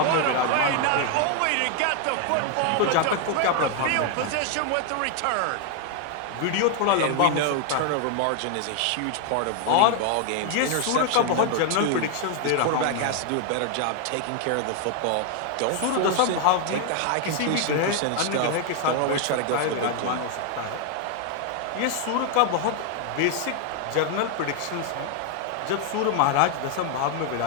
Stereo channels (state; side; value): different; both; correlation 0.00